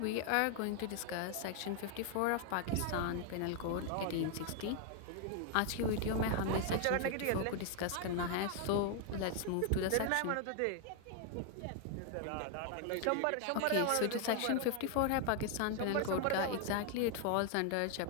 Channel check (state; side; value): different; both; correlation 0.00